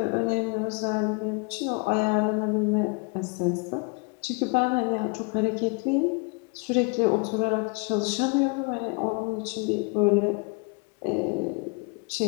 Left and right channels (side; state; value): right; quieter; 32.0 dB